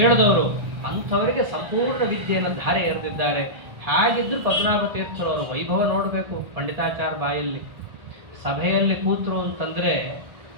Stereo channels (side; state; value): left; late; 1.4 ms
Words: ಅಂಥವರಿಗೆ ಸಂಪೂರ್ಣ ವಿದ್ಯೆಯನ್ನು ಧಾರೆ ಎರೆದಿದ್ದಾರೆ. ಹಾಗಿದ್ರು ಪದ್ಮನಾಭ ತೀರ್ಥರವರ ವೈಭವ ನೋಡಬೇಕು. ಪಂಡಿತಾಚಾರ್ಯ ಬಾಯಲ್ಲಿ ಸಭೆಯಲ್ಲಿ ಕೂತರು ಅಂತಂದ್ರೆ,